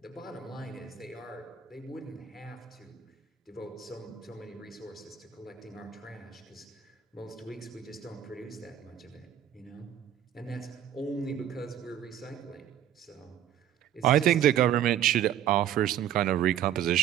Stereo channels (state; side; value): quieter; left; 10.4 dB